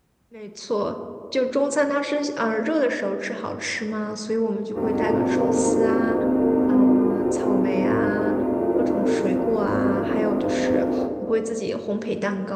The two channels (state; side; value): identical; both; correlation 1.00